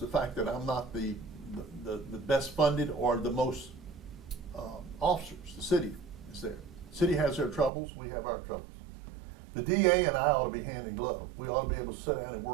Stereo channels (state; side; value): drops out; left; at 7.7 s